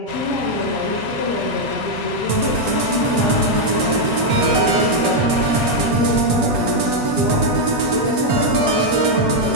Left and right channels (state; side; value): late; left; 8.2 ms